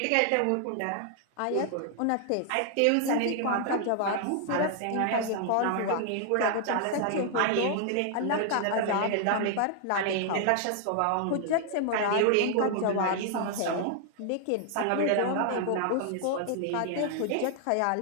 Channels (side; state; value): both; different; correlation 0.00